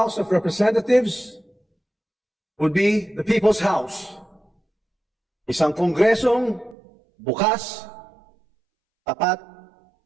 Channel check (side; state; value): left; drops out; at 6.8 s